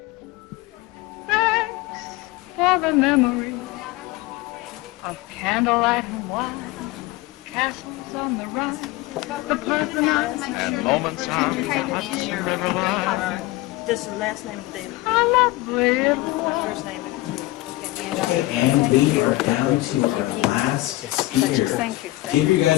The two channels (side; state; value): right; quieter; 18.8 dB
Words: Thanks for the memory of candlelight and wine, castles on the Rhine, and moments on the Hudson River line. Just the last name of the day. How lovely it was. First name and two. Okay, and we are down to our last speaker. Give you